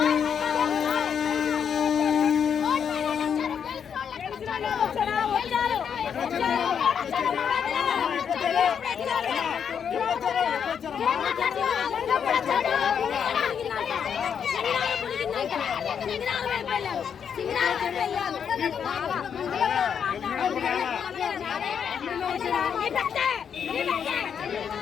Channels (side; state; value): right; quieter; 7.6 dB